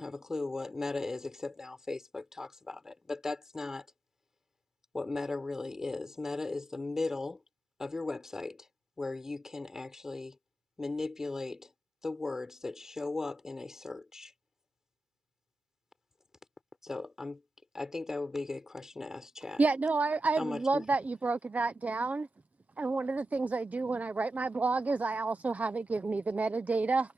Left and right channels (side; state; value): both; normal; correlation 0.91